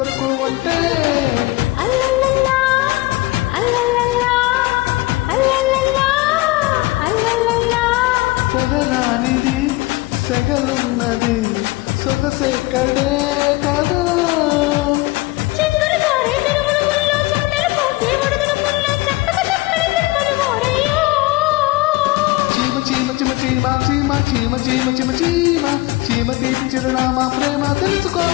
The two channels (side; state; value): right; quieter; 20.9 dB